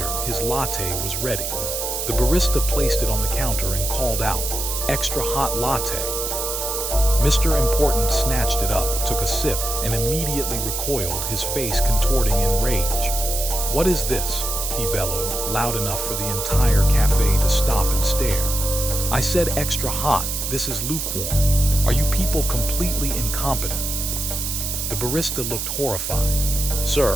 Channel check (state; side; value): noise; right; hiss, 3 dB below the sound